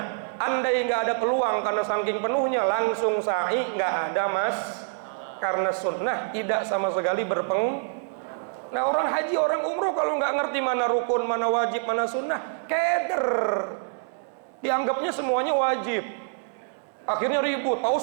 Andai nggak ada peluang karena saking penuhnya langsung sa'i, nggak ada mas, karena sunnah tidak sama sekali Nah orang haji, orang umroh kalau nggak ngerti mana rukun, mana wajib, mana sunnah, keder. Dianggapnya semuanya wajib. Akhirnya ribut, Pak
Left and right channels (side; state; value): left; silent; digital silence